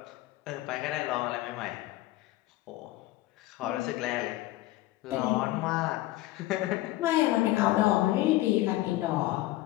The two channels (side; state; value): right; quieter; 17.0 dB